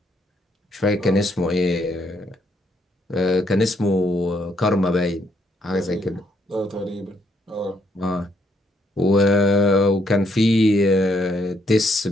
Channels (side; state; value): both; normal; correlation 0.72